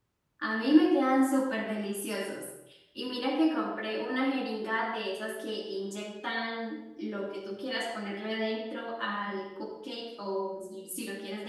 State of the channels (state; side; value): identical; both; correlation 1.00